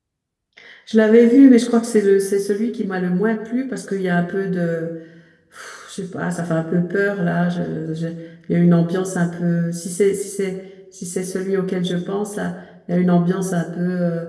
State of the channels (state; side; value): identical; both; correlation 1.00